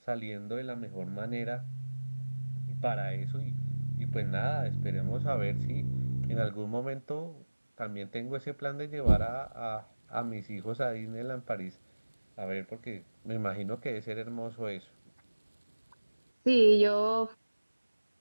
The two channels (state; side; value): inverted; both; correlation -1.00